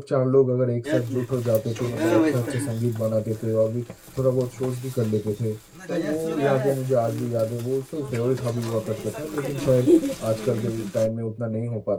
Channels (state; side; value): identical; both; correlation 1.00